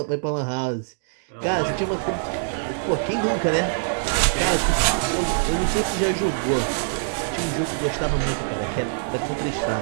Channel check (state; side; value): silent; left; digital silence